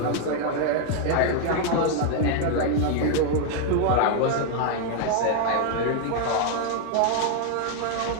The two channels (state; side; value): different; both; correlation 0.00